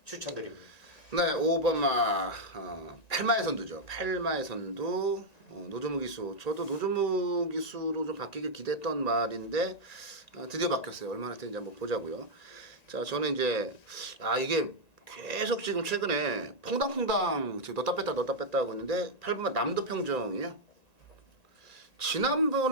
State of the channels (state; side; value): late; right; 1.9 ms